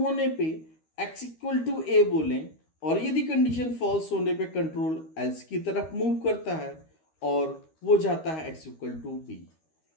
होने पे एक्स इक्वल टू ए बोलें, और यदि कंडीशन फॉल्स होने पे कंट्रोल एल्स की तरफ मूव करता है और वो जाता है एक्स इक्वल टू बी।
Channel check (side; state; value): right; late; 13 ms